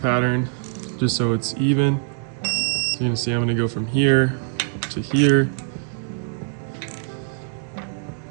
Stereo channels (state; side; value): silent; left; 62 dB below the other